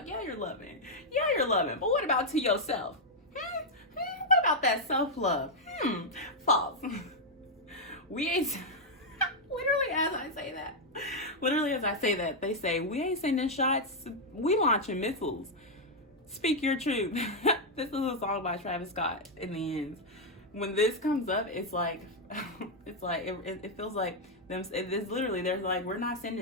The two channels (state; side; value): normal; both; correlation -0.02